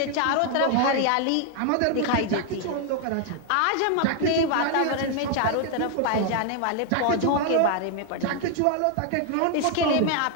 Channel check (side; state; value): both; different; correlation 0.00